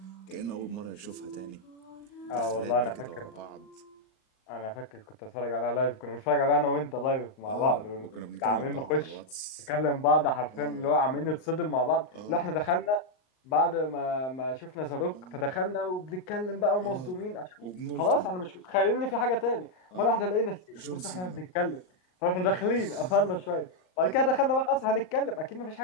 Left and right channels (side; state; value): right; late; 38 ms